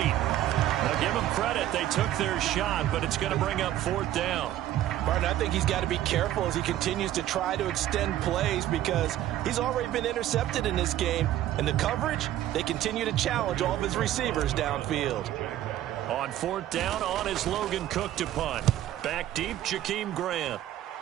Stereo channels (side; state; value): left; quieter; 13.0 dB